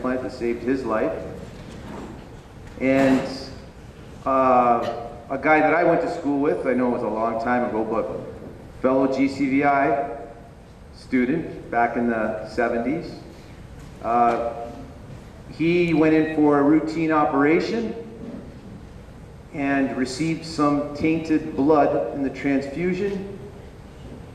that saved his life. And a guy that I went to school with, I know it was a long time ago, but fellow GCVI student back in the 70s. He went in for a routine operation and received some tainted blood in the transfusion,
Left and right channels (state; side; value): identical; both; correlation 1.00